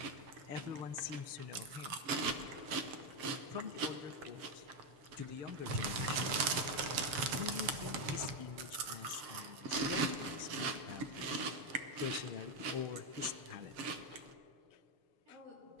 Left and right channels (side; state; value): left; late; 6.9 ms